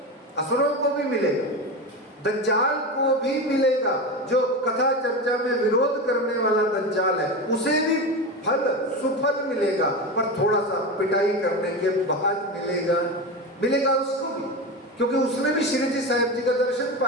असुरों को भी मिलेगा, दज्जाल को भी मिलेगा। जो कथा चर्चा में विरोध करने वाला दज्जाल है उसे भी फल सुफल मिलेगा, पर थोड़ा सा पिटाई करने के बाद मिलेगा उसको भी, क्योंकि उसने भी श्री जी साहिब जी का दर्शन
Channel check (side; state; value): both; normal; correlation 0.21